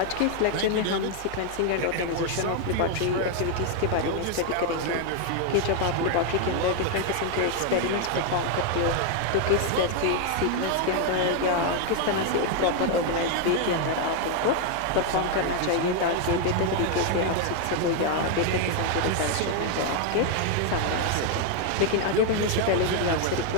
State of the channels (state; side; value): different; both; correlation 0.00